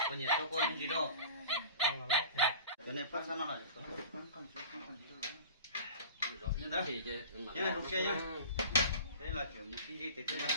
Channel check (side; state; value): both; inverted; correlation -0.39